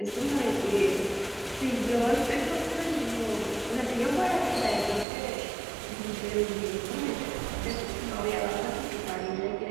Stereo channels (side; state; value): left; drops out; at 5.1 s